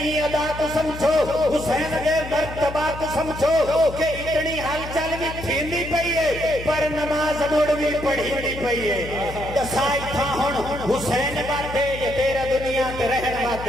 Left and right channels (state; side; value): noise; left; hum, 11 dB below the sound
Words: ادا کو سمجھو حسین دے مرتبہ کو سمجھو کہ اتنی حال چل بھی تھیندی پئی ہے پر نماز مڑ بھی پڑھی نہیں پئی ہے دسائی تھا ہن حسین باتے یہ تیرا دنیا تے رہن